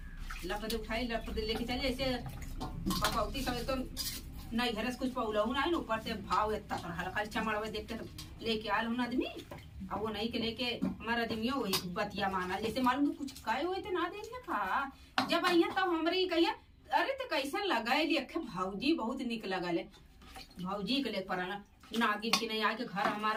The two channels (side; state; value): both; identical; correlation 1.00